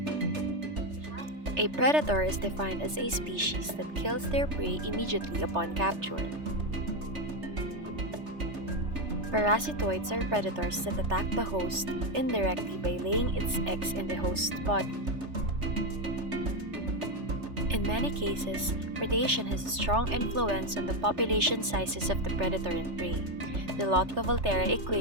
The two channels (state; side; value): late; left; 3.3 ms